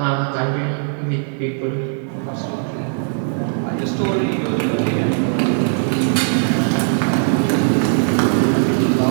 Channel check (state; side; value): silent; left; digital silence